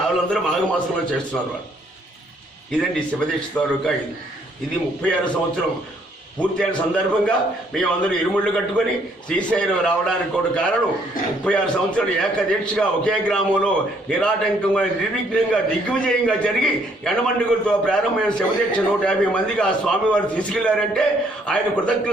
మాఘమాసంలో చేస్తున్నారు వాళ్ళు. ఇదండి శివదీక్ష తాలూకా. ఇది 36 సంవత్సరం పూర్తయిన సందర్భంగా మేమందరూ ఇరుముళ్ళు కట్టుకొని శ్రీశైలం రావడానికి కూడా కారణం 36 సంవత్సరాలు ఏకదీక్షగా ఒకే గ్రామంలో నిరాటంకంగా నిర్విఘ్నంగా దిగ్విజయంగా జరిగి ఎండమండుగులతో ప్రారంభమైన శివదీక్ష 150 మందికి ఆ స్వామివారు తీసుకెళ్లారంటే ఆయన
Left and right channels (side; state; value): both; normal; correlation 0.67